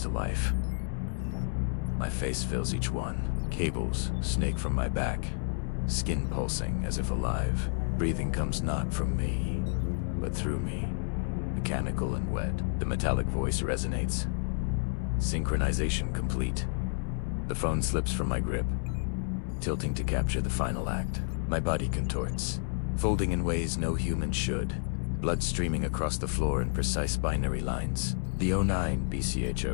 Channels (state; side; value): silent; right; 58 dB below the other